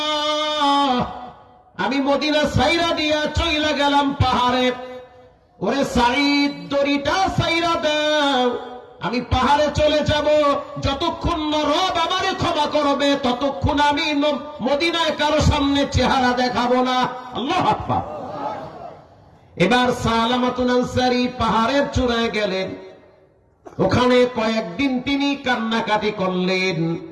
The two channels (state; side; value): identical; both; correlation 1.00